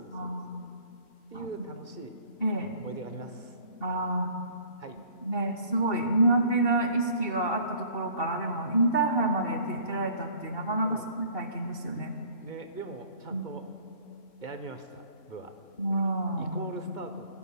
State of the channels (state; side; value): late; right; 2.7 ms